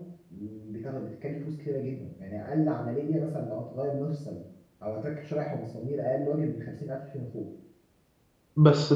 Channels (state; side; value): identical; both; correlation 1.00